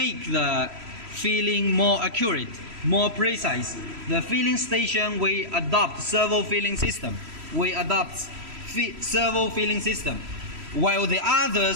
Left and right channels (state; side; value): late; left; 3.0 ms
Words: the filling more accurate, more precise. The filling station, we adopt servo filling system. Servo filling system. While the